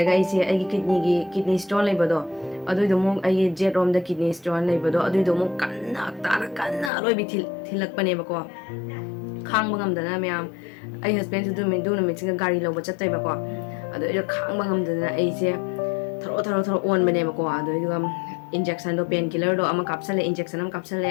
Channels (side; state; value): right; drops out; at 6.9 s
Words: ꯑꯩꯒꯤ ꯀꯤꯗꯅꯤ ꯁ꯭ꯇꯣꯟ ꯂꯩꯕꯗꯣ ꯑꯗꯨꯏꯗꯣ ꯑꯃꯨꯛ ꯑꯩꯒꯤ ꯖꯦꯠ ꯔꯣꯝꯗ ꯀꯤꯗꯅꯤ ꯁ꯭ꯇꯣꯟ ꯂꯩꯕꯗꯣ ꯑꯗꯨꯏꯗꯣ ꯑꯃꯨꯛ ꯀꯟꯅ ꯑꯔꯣꯏꯕꯤ ꯊꯤꯜꯂꯛꯄꯅꯦꯕꯀꯣ ꯈꯥꯡꯕ ꯉꯝꯗꯅ ꯃꯌꯥꯝ ꯑꯩ ꯍꯁꯕꯦꯟꯁꯨ ꯑꯗꯨ ꯅꯨꯃꯤꯠꯁꯤꯒ ꯒꯥꯔꯤ ꯂꯧꯕ ꯆꯠꯇꯣꯏꯕꯀꯣ ꯑꯗꯣ ꯑꯩꯗꯣ ꯈꯥꯡꯕ ꯉꯝꯗꯅ ꯑꯩꯁꯦ ꯊꯔꯣ ꯑꯣꯟꯕꯅꯦꯕꯀꯣ ꯑꯗꯨꯏꯗꯨꯒ ꯏꯟꯖꯦꯛꯁꯟꯗꯣ ꯄꯦꯟ ꯀꯤꯂꯔꯗꯣ ꯑꯃ ꯀꯥꯞꯁꯜꯂꯦ ꯏꯟꯖꯦꯛꯁꯟ ꯑꯃ ꯀꯥꯞꯁꯜꯂꯦ